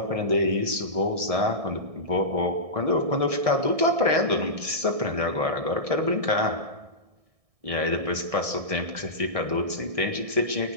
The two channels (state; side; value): late; left; 1.6 ms